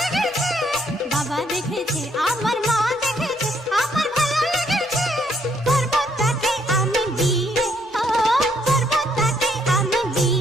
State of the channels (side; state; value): both; normal; correlation 0.70